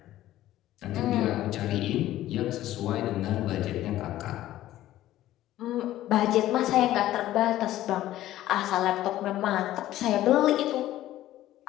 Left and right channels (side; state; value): right; quieter; 14.2 dB